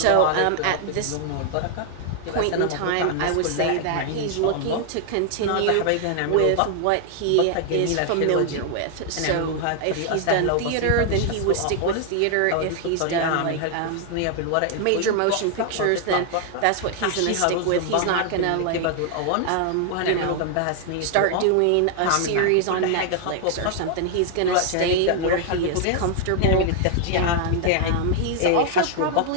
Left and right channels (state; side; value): different; both; correlation 0.00